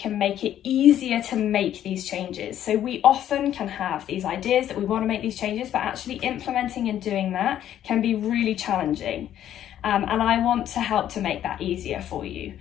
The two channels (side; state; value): right; quieter; 11.2 dB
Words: make it easier to make these changes. So we often can have these ideas that we want to make these changes, but actually implementing and doing that can be really challenging. And I want to help to make that easier for you.